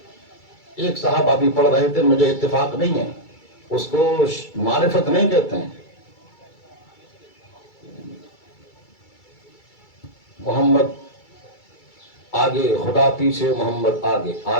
ایک صاحب ابھی پڑھ رہے تھے، مجھے اتفاق نہیں ہے، اس کو معرفت نہیں کہتے ہیں. محمد آگے، خدا پیچھے، محمد آگے،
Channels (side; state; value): right; late; 2.3 ms